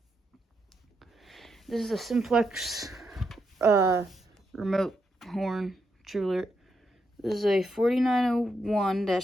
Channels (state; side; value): normal; both; correlation 0.81